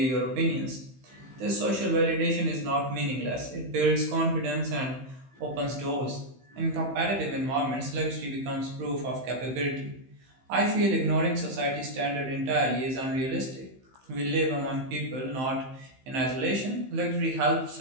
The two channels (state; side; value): late; left; 15 ms